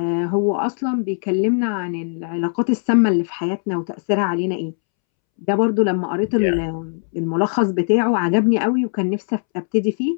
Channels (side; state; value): right; silent; 66 dB below the other